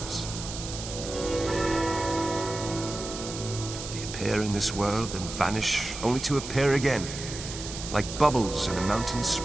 They appear in this world and vanish, only to appear again, like bubbles in a mountain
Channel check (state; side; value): noise; right; hiss, 9 dB below the sound